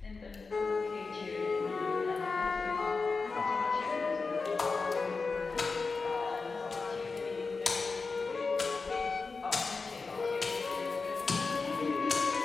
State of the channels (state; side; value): quieter; right; 4.3 dB